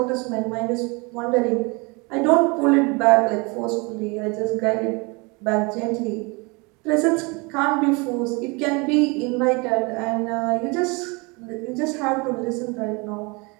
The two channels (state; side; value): quieter; left; 28.5 dB